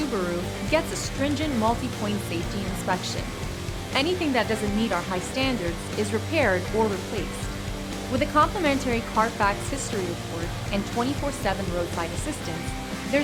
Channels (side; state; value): both; identical; correlation 1.00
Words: gets a stringent multi-point safety inspection. Anything that doesn't meet our high standards is repaired or replaced. With a complimentary Carfax history report and 24/7 roadside assistance,